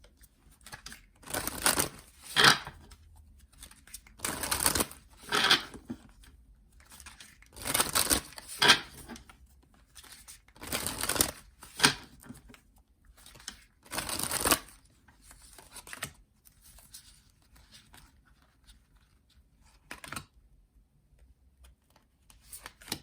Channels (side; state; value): both; identical; correlation 1.00